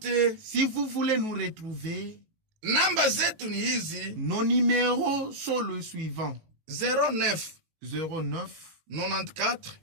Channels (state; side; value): late; left; 18 ms